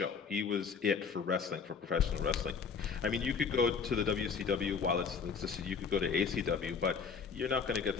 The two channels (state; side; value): quieter; right; 5.8 dB